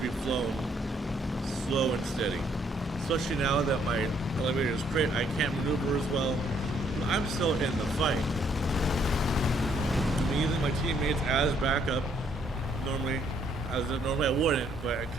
be flown slow and steady. Especially now that my elevator is crit, I can't maneuver as well. But I'm still in the fight. I'm using my teammates as backup. Normally I wouldn't, but I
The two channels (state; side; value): normal; both; correlation 0.68